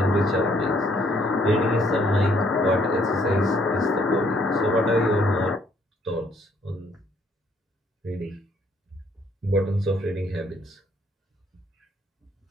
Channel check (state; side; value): normal; both; correlation 0.66